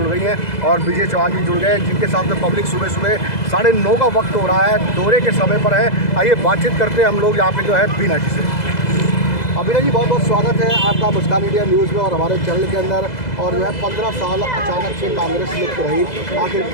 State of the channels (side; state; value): right; late; 2.0 ms